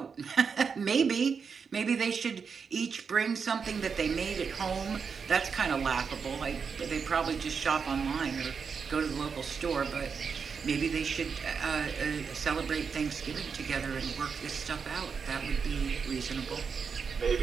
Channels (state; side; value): quieter; left; 5.9 dB